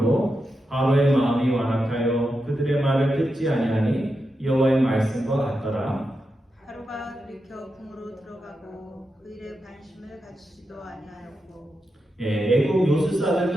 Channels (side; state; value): both; normal; correlation 0.88